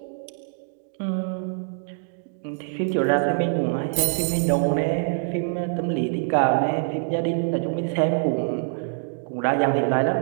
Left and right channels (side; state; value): left; silent; 62 dB below the other